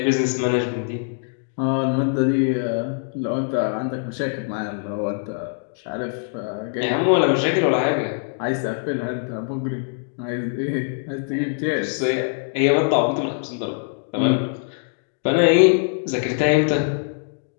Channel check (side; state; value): right; silent; digital silence